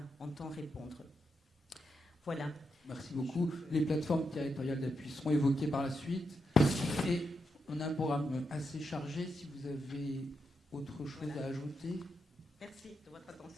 entend répondre. Voilà. Merci beaucoup. Les plateformes territoriales d'appui seront évoquées par la suite. Et on a un programme assez chargé. Si vous avez autre chose à ajouter. Merci de votre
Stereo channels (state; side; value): normal; both; correlation 0.84